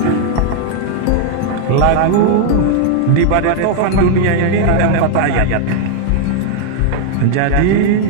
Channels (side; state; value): both; different; correlation 0.00